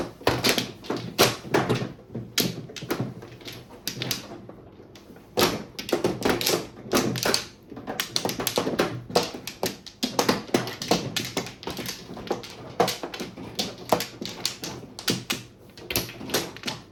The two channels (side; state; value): both; identical; correlation 1.00